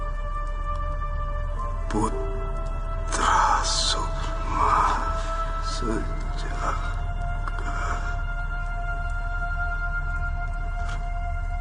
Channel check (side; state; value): both; identical; correlation 1.00